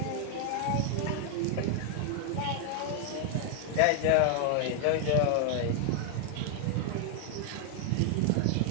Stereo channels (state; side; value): different; both; correlation 0.00